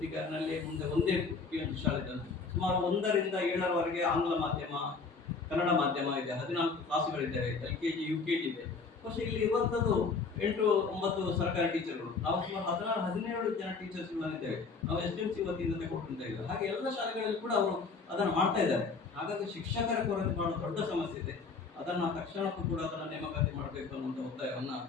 ಮುಂದೆ 1 PMC ಶಾಲೆ ಇದೆ. ಸುಮಾರು 1ರಿಂದ 7ರವರೆಗೆ ಆಂಗ್ಲ ಮಾಧ್ಯಮ, ಕನ್ನಡ ಮಾಧ್ಯಮ ಇದೆ. 14 ಕ್ಲಾಸುಗಳಿದ್ದಾವೆ. LKG UKG ಇದೆ. പക്ഷെ ಇಲ್ಲಿ ಇರುವಂತದ್ದು 8 9 ಸರ್ಕಾರಿ ಟೀಚರ್ಗಳು. ನಾವು ಸುಮಾರು 16 17 ಜನ ಟೀಚರ್ಸ್ ಇದ್ದೇವೆ. ನಾವು SDMC ವತಿಯಿಂದ ತಗೊಂಡಿದ್ದೇವೆ. ಹಾಗೆ ಎಲ್ಲ ಶಾಲೆಗಳಲ್ಲಿ ಕೂಡ ಅವರು ಅದನ್ನು ಮಾಡ್ತಾ ಇದ್ದಾರೆ. ಹಾಗಾಗಿ ಶಿಕ್ಷಕರ ಕೊರತೆ ಬಹಳ ದೊಡ್ಡ ಸಮಸ್ಯೆ ಇದೆ. ಅದನ್ನ ತಕ್ಷಣಕ್ಕೂ ಕೂಡ ಅದನ್ನ ನೇಮಕಾತಿ ಮಾಡಬೇಕು ಅನ್ನುವಂಥ ಒತ್ತಾಯವನ್ನ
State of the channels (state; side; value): quieter; right; 4.6 dB